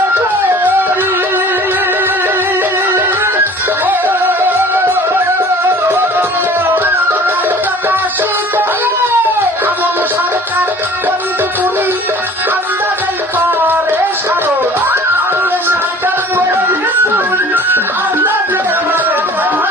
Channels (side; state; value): both; normal; correlation 0.47